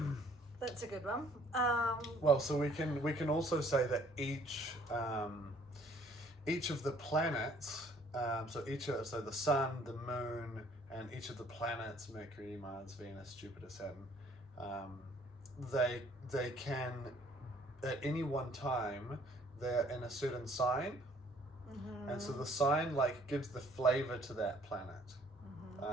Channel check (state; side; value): normal; both; correlation 0.59